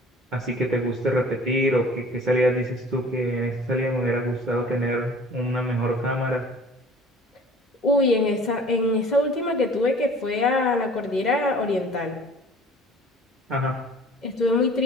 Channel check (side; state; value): both; normal; correlation 0.48